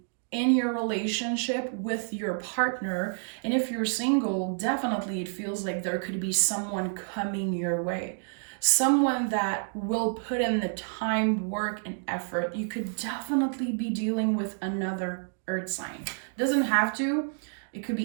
in your relationship with your partner. And if you're single, definitely it feels like there could be someone coming your way. Someone that will put in the time, work, and effort. You could definitely be dealing with another earth sign. Doesn't have to. It could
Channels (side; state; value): left; silent; 59 dB below the other